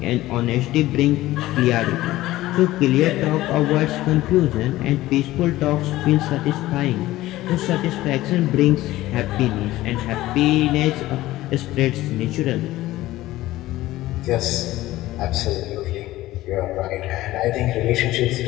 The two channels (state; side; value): quieter; right; 16.5 dB